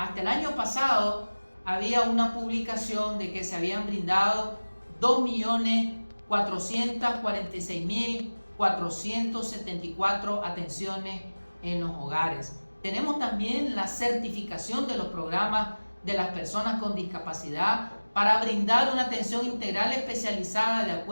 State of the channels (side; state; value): both; inverted; correlation -1.00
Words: el año pasado había una publicación de que se habían brindado 2.446.474 atenciones en los hogares. Tenemos también la certificación de los programas de las personas con discapacidad para brindar una atención integral especializada de